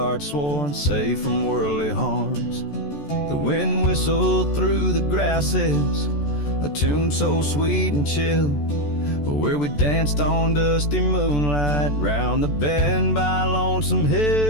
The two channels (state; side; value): late; right; 14 ms